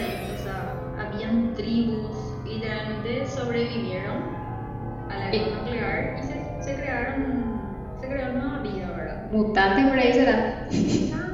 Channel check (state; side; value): identical; both; correlation 1.00